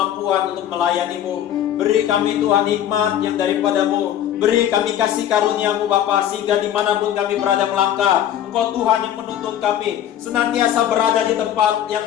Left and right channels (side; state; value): right; quieter; 10.9 dB